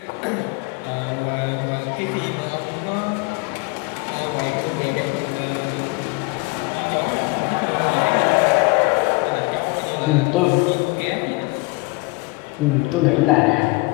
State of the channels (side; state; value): right; quieter; 26.3 dB